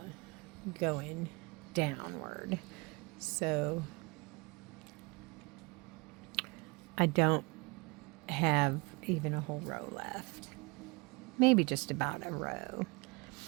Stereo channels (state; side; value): quieter; left; 27.6 dB